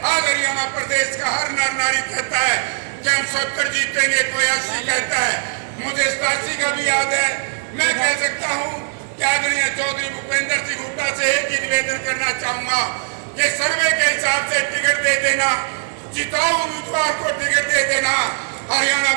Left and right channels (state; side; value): silent; left; digital silence